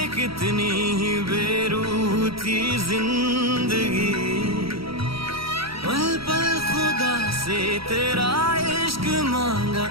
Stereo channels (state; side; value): late; left; 0.75 ms